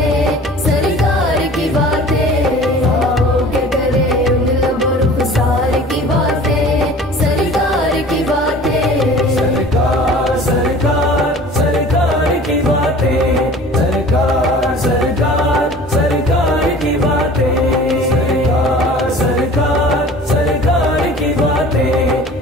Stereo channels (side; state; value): both; normal; correlation 0.44